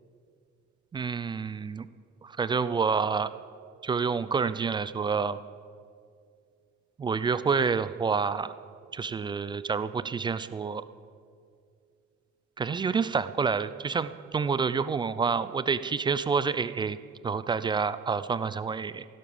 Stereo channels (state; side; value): quieter; left; 5.1 dB